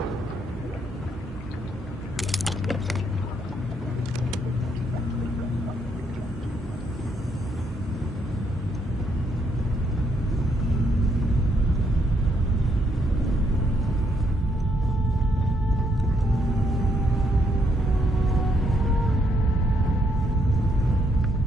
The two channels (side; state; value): both; normal; correlation 0.74